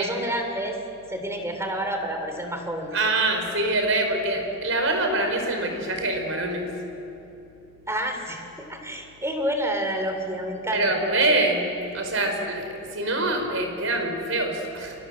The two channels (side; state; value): left; noise; hum, 27 dB below the sound